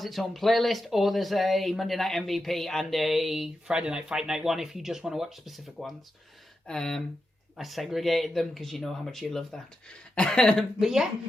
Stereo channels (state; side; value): normal; both; correlation 0.89